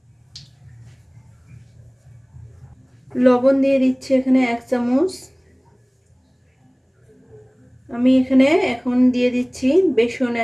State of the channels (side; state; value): both; identical; correlation 1.00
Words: লবণ দিয়ে দিচ্ছি এখানে 1 চামচ। আমি এখানে এখন দিয়ে দিচ্ছি বেসন